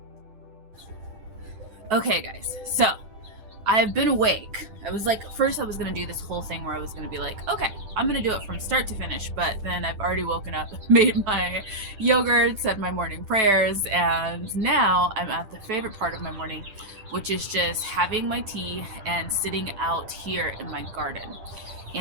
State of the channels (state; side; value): late; left; 10 ms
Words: Okay guys, so I've been awake. I was like, first I was gonna do this whole thing where I was gonna be like, okay, I'm gonna do it from start to finish, but then I've already woken up, made my yogurt, said my morning prayers, and now I'm at the favorite part of my morning, which is just having my tea and sitting out here in my garden.